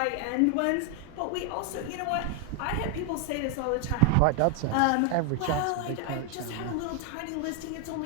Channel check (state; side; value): different; both; correlation 0.01